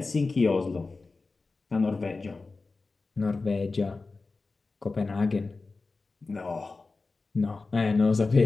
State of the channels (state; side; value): quieter; right; 3.8 dB